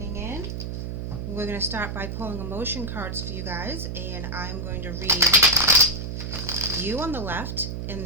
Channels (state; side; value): noise; right; hum, 5 dB below the sound